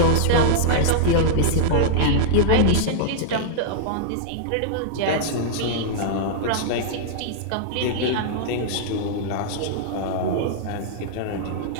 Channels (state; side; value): different; both; correlation -0.02